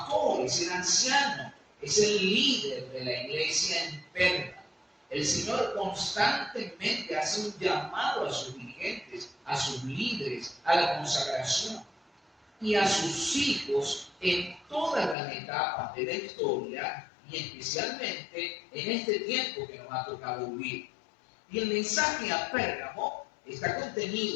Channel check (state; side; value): drops out; right; at 15.2 s